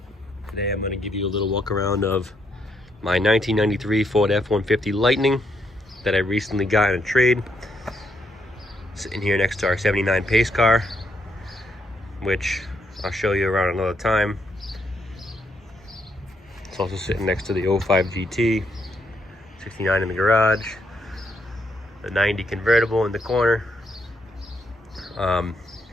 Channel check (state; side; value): normal; both; correlation 0.76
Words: Today I'm going to give you a little walk around of my 1993 Ford F-150 Lightning that I recently got in a trade. Sitting here next to our 79 pace car, which I'll show you around another time. It's also sitting next to the 05 GT, 69 in the garage, the 90 convertible in the corner.